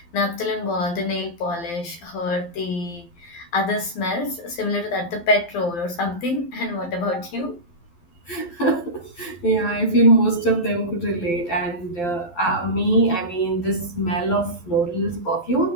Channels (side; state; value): right; late; 12 ms